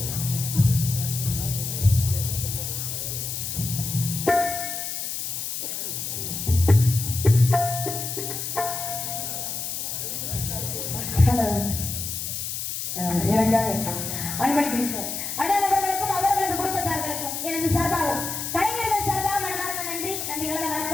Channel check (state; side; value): noise; left; hiss, 4 dB below the sound